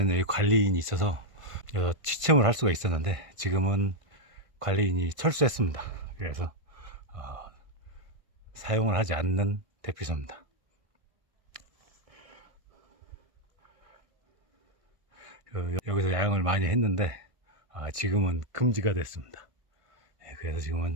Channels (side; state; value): left; late; 1.5 ms